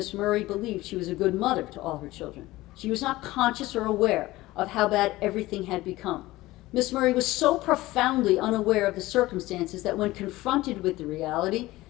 Murray believed she was a good mother to all her children. She was not conscious or aware of how bad everything had become. Miss Murray was so profoundly unaware of the circumstances that when confronted with the reality,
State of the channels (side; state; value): right; quieter; 18.1 dB